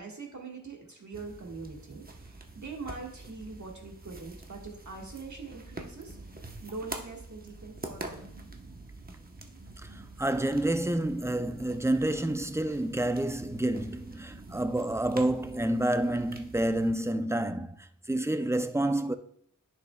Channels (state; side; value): normal; both; correlation 0.86